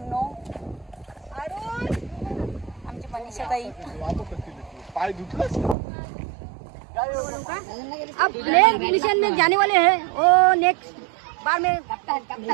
नो. आमची मनीषा ताई अब नेक्स्ट मिशन में जाने वाले हैं. वो नेक्स्ट बार में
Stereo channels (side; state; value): left; drops out; at 5.8 s